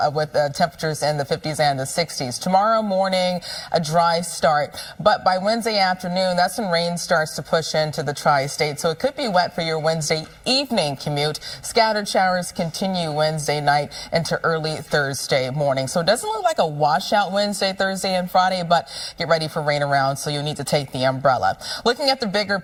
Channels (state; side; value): identical; both; correlation 1.00